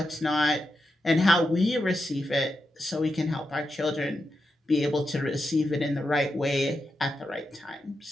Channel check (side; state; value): both; normal; correlation 0.87